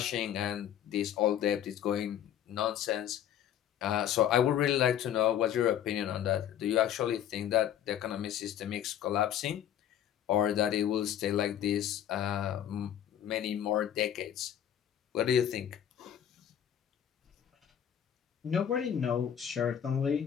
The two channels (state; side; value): quieter; right; 10.1 dB